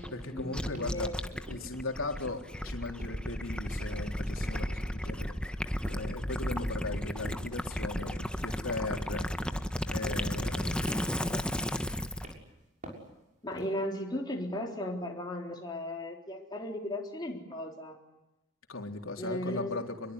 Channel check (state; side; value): normal; both; correlation 0.56